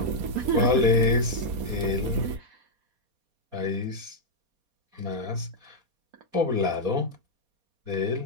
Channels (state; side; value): late; left; 4.2 ms